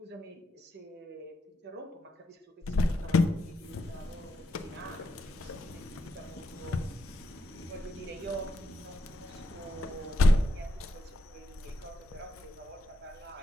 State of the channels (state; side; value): normal; both; correlation 0.82